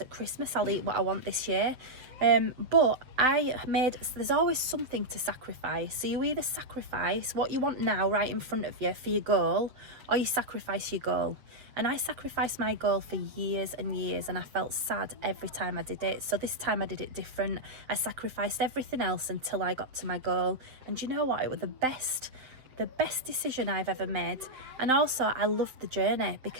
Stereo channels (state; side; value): late; left; 7.8 ms